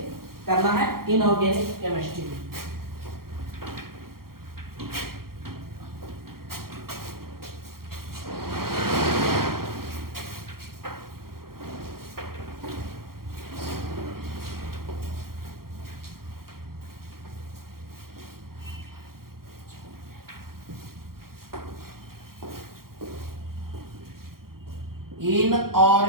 करना है इनऑर्गेनिक केमिस्ट्री में।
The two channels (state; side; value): late; left; 0.93 ms